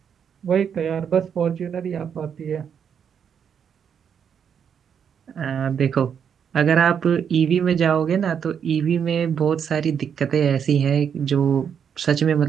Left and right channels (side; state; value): left; quieter; 7.7 dB